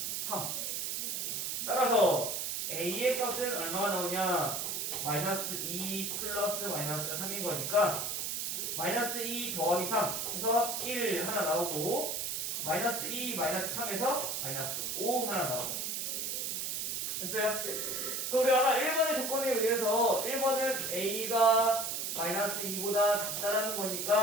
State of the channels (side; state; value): right; noise; hiss, 2 dB below the sound